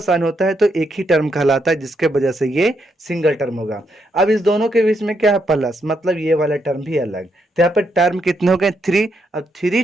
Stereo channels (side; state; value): both; normal; correlation 0.78